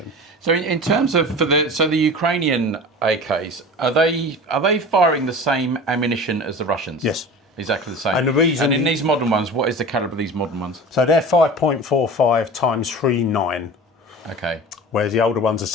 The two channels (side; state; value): both; normal; correlation 0.36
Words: So in terms of the Ukrainian AKs, are they firing the same ammunition as the Russians? Yes. Exactly the same. And the reason... And in these modern ones, what is the calibre of these modern ones? So they're 5.45 times 3.9. Okay. Whereas the older ones